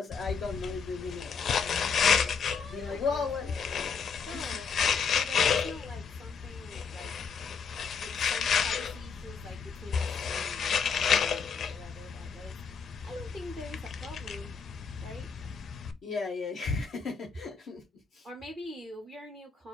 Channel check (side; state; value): right; quieter; 5.9 dB